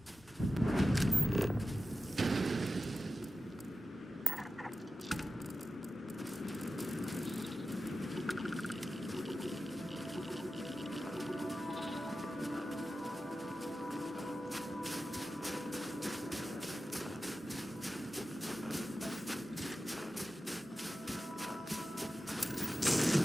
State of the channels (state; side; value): normal; both; correlation 0.93